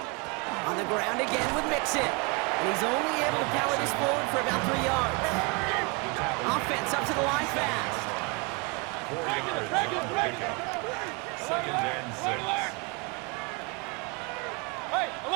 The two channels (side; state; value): left; quieter; 30.3 dB